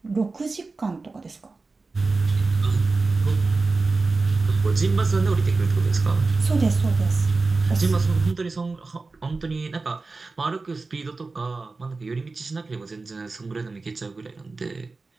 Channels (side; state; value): left; quieter; 3.8 dB